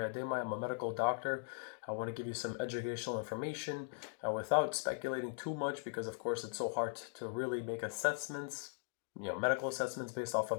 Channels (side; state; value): right; silent; digital silence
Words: I'm a medical doctor. I want to give you some educational information without speculating too much, because of course it's so hard to really make assessments, medical assessments based off